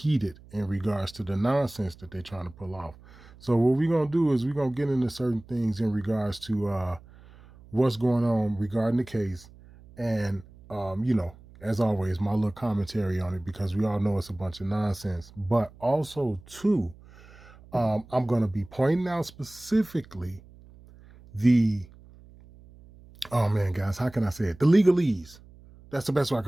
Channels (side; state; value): right; noise; hum, 23 dB below the sound